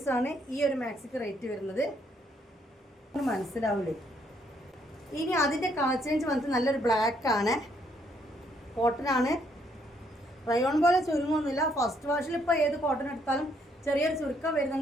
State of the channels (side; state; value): both; normal; correlation 0.70